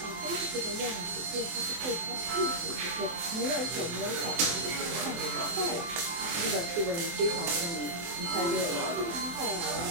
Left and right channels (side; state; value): left; late; 23 ms